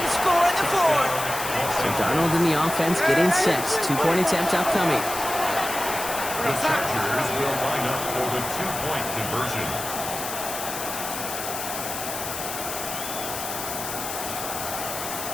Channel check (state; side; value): noise; left; hiss, 6 dB below the sound